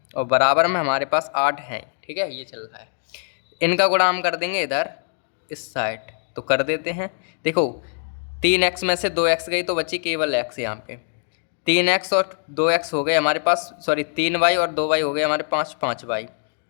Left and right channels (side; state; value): right; silent; digital silence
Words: और बराबर में हमारे पास 8 हैं। ठीक है, ये चल रहा है। इनका गुणा हम कर देंगे इधर इस साइड, तो कर देते हैं। देखो 3x में से 2x गई तो बची केवल x, यहाँ पे 3x और 2x हो गए हमारे पास, सॉरी 3y और 2y हो गए हमारे पास 5y,